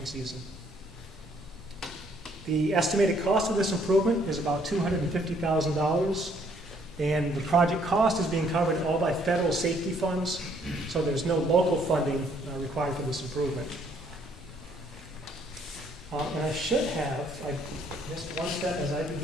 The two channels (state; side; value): normal; both; correlation 0.66